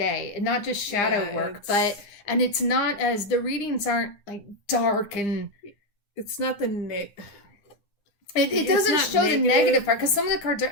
and not just shadow work, and it's not as the readings aren't like dark and it's not the it doesn't show the negative part, because some of the cards are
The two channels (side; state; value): right; late; 9.8 ms